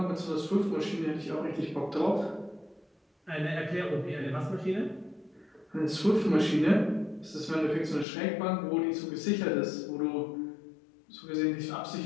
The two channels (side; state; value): right; drops out; at 8.1 s